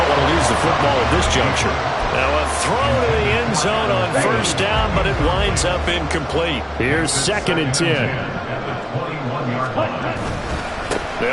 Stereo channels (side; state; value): both; identical; correlation 1.00